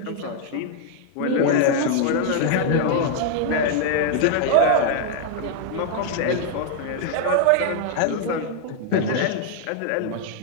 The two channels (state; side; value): different; both; correlation 0.00